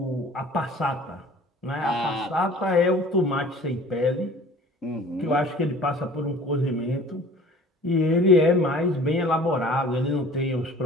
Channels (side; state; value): both; normal; correlation 0.46